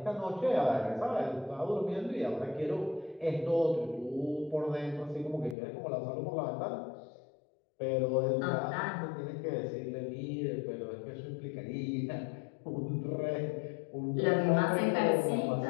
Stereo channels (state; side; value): drops out; right; at 5.6 s